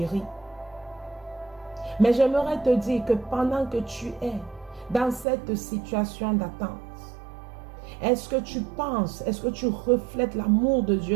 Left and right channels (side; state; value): left; drops out; at 5.2 s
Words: Mais j'aimerais te dire que pendant que tu es dans cette situation d'attente, est-ce que tu penses, est-ce que tu reflètes l'amour de